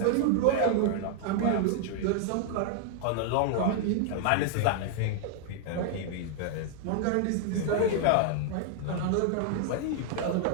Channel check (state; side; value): different; both; correlation 0.00